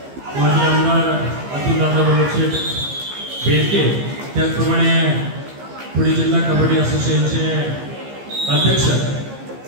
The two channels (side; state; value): left; late; 15 ms